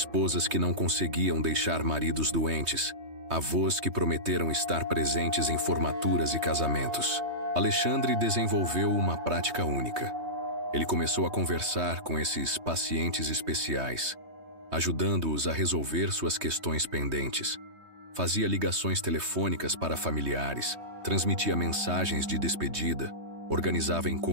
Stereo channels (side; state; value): left; late; 3.2 ms